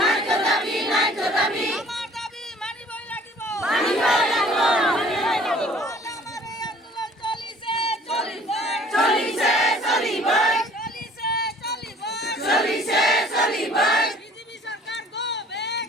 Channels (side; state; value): both; normal; correlation 0.53